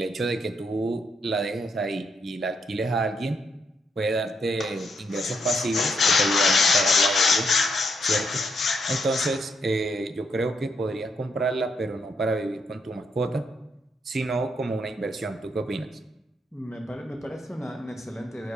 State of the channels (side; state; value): both; normal; correlation 0.78